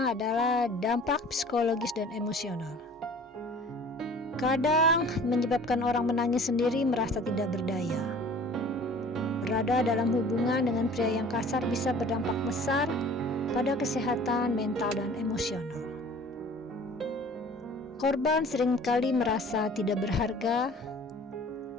adalah dampak psikologis dan emosional. Kadang menyebabkan orang menangis sendiri, merasa tidak berdaya. Berada dalam hubungan dengan pria yang kasar bisa berdampak besar pada kesehatan mental dan emosional. Korban seringkali merasa tidak berharga,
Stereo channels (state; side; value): normal; both; correlation 0.47